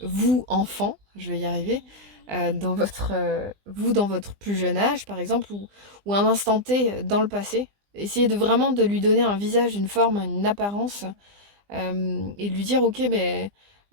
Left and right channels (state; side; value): late; left; 20 ms